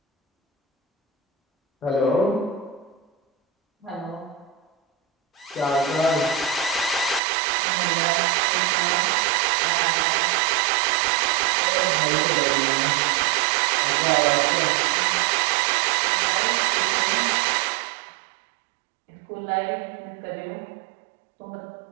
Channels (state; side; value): drops out; left; at 7.2 s